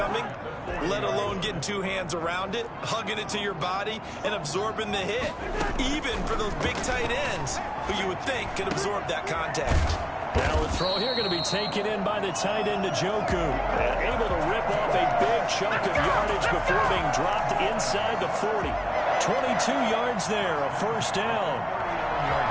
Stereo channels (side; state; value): both; identical; correlation 1.00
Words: let alone getting 2 hands around it, hugging it to your body, and absorbing the hit. Even for those big tight ends who you would think could absorb that contact. Now the throw here going to be taken in by the tight end Njoku. And able to rip off a big chunk of yardage before being dropped inside the 40. 22 yards there, a first down.